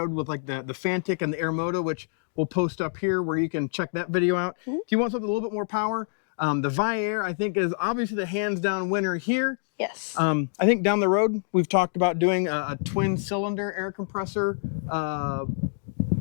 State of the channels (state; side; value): silent; right; digital silence